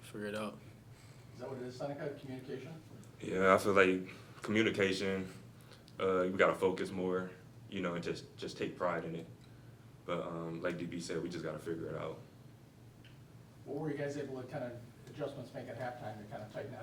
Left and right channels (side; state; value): both; identical; correlation 1.00